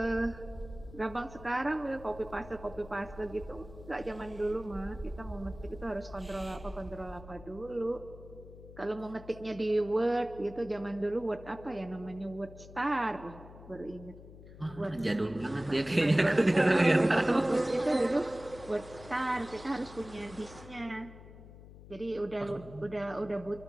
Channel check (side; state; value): left; noise; hum, 17 dB below the sound